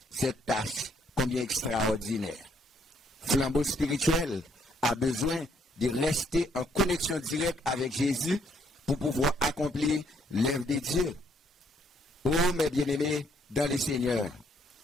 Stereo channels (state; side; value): normal; both; correlation 0.69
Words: cette tâche combien extraordinaire. Flambeau spirituel a besoin de rester en connexion directe avec Jésus pour pouvoir accomplir l'œuvre de Dieu. Oh, mes bien-aimés dans les Seigneurs,